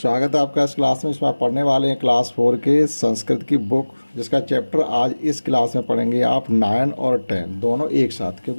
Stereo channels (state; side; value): inverted; both; correlation -1.00